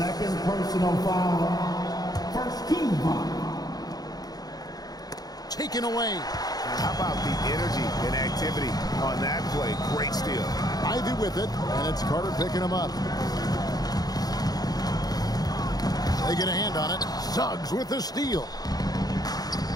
personal foul. First team foul. Taken away. How about the energy and activity on that play? Great steal. Ivy with it, and it's Carter picking him up. They get a hand on it. Suggs with the steal.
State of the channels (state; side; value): late; right; 0.19 ms